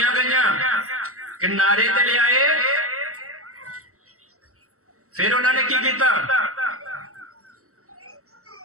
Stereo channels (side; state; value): left; late; 0.64 ms